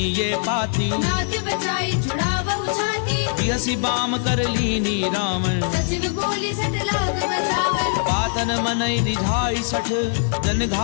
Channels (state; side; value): silent; right; digital silence